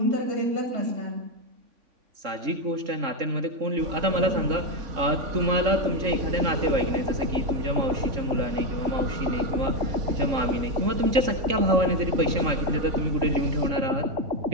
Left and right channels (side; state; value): left; late; 3.6 ms